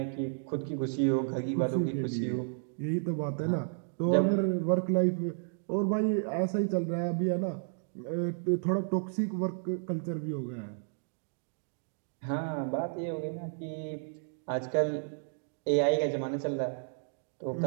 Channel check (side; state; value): left; silent; digital silence